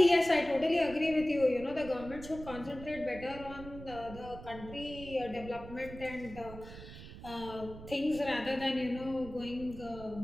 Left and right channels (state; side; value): noise; right; rumble, 14 dB below the sound